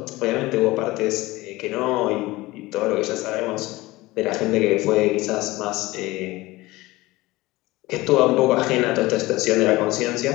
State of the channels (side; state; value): right; quieter; 19.8 dB